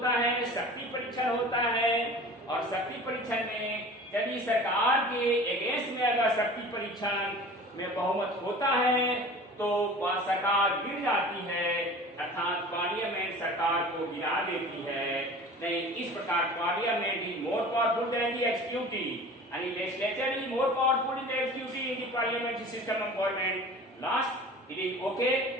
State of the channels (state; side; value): normal; both; correlation 0.40